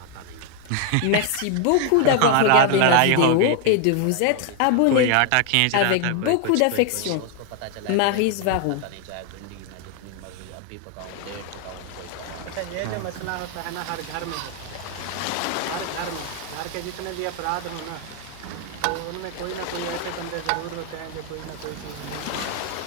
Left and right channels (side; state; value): both; different; correlation 0.00